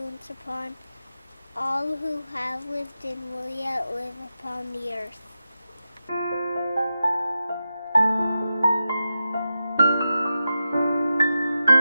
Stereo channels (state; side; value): inverted; both; correlation -0.91